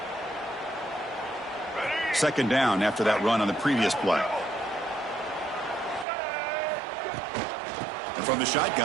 Second down after that run on the previous play. And from the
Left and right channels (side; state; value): left; drops out; at 6.1 s